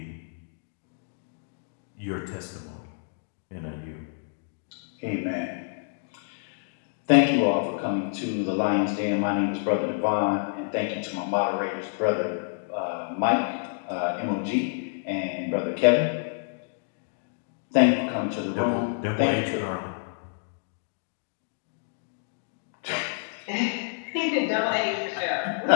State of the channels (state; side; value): silent; right; digital silence